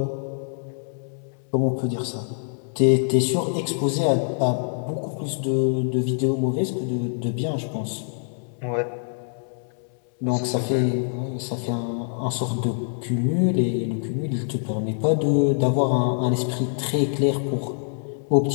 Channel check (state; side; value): silent; right; digital silence